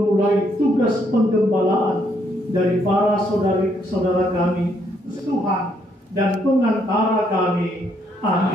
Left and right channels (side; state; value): both; normal; correlation 0.72